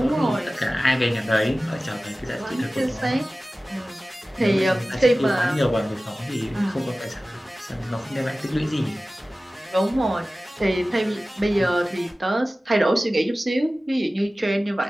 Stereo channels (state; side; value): normal; both; correlation 0.96